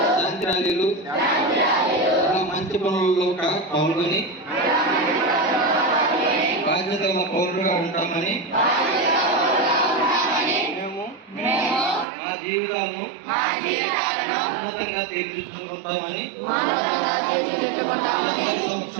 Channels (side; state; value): left; drops out; at 12.1 s